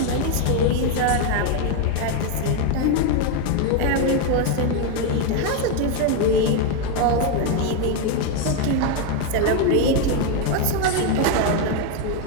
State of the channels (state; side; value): different; both; correlation 0.01